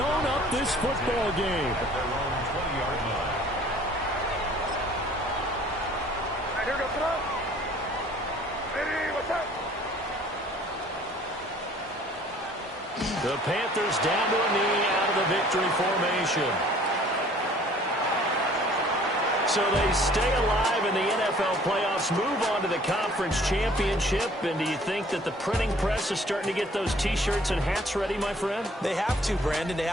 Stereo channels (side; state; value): both; normal; correlation 0.54